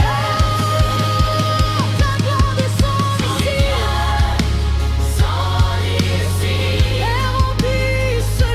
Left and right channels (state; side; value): identical; both; correlation 1.00